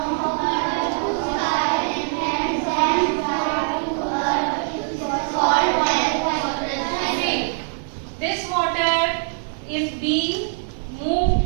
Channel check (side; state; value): left; silent; 64 dB below the other